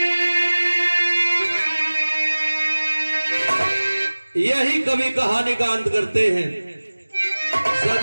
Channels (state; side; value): inverted; both; correlation -1.00